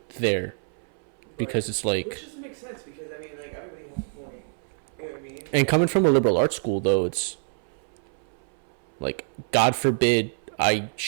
there, because it's like, which doesn't make sense, because I mean, like, everybody has a point. You know what I mean? and coming from a liberal arts school though, it's like, God forbid I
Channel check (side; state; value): left; silent; 61 dB below the other